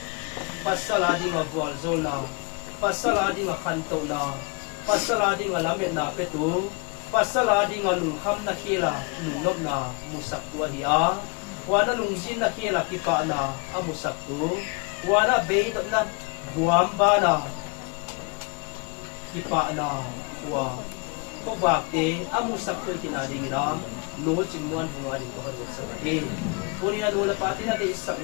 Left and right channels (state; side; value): quieter; right; 30.7 dB